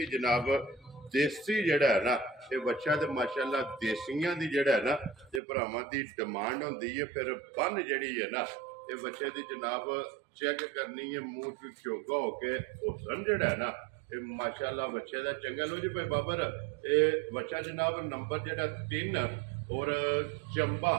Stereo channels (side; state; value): left; drops out; at 5.4 s